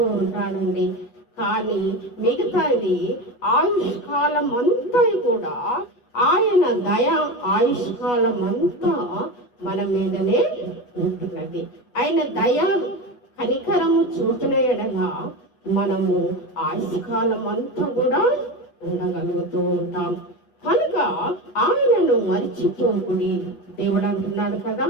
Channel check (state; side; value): late; right; 8.2 ms